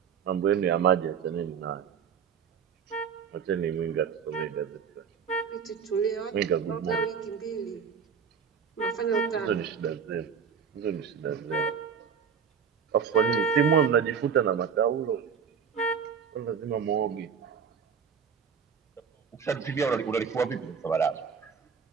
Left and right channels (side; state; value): left; quieter; 6.8 dB